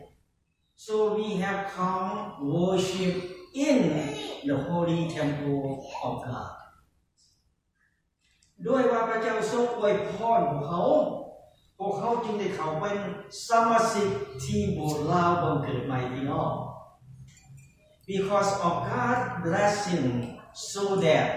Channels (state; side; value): identical; both; correlation 1.00